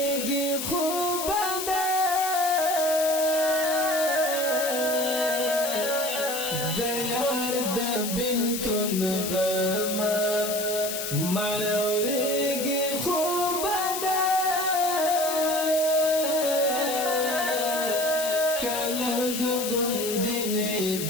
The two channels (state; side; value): noise; left; hiss, 5 dB below the sound